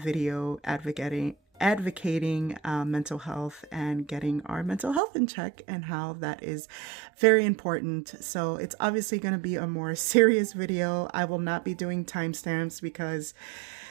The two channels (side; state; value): left; drops out; at 5.0 s